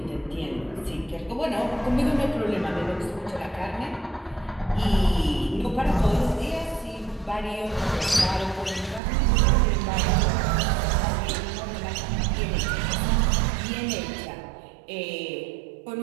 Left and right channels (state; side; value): drops out; left; at 9.0 s